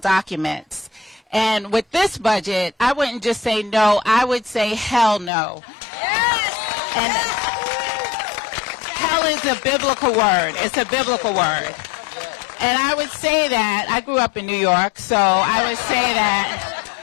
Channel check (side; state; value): right; drops out; at 5.3 s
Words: And with this budget, I wouldn't just say no, I would say hell no. Yes! And hell is a biblical word. It's a biblical word. And I would say that, I grew up in New York, so I would say that